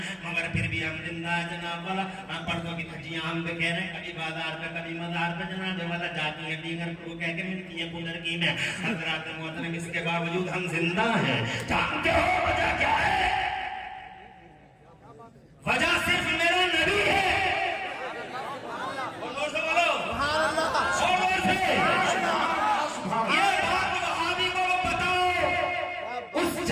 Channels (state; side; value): identical; both; correlation 1.00